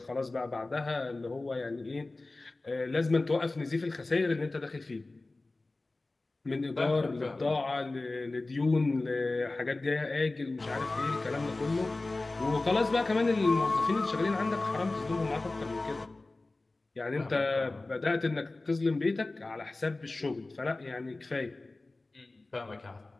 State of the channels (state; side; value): quieter; right; 3.1 dB